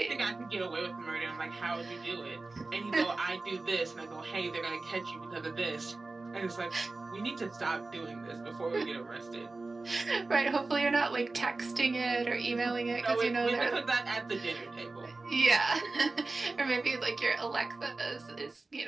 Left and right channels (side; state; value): left; quieter; 3.4 dB